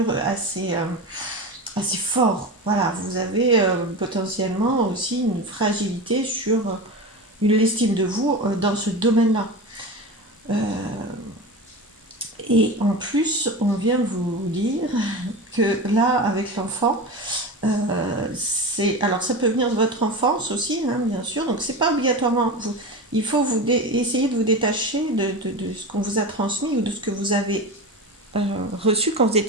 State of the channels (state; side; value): normal; both; correlation 0.26